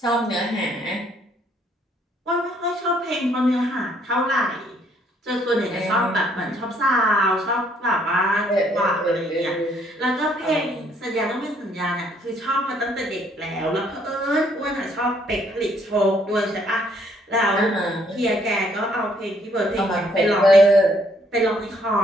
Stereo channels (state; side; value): normal; both; correlation 0.66